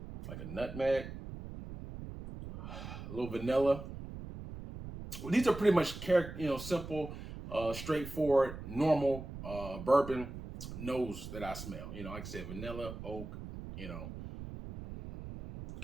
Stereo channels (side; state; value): right; noise; rumble, 10 dB below the sound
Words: like a nutmeg, a little vanilla. Well, these are pretty much, you know, simple, straightforward, normal bourbon nose that I smell. You know, like I said, vanilla, oak, you know,